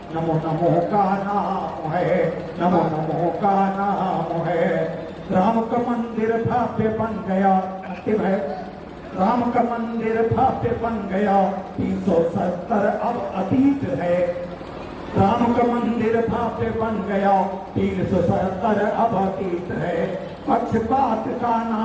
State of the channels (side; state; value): both; identical; correlation 1.00